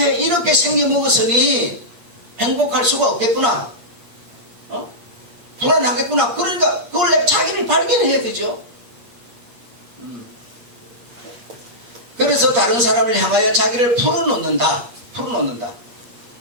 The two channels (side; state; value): left; late; 8.5 ms